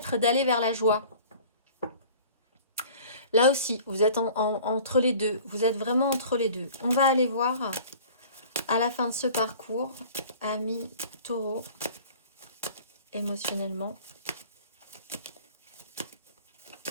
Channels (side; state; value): both; inverted; correlation -0.46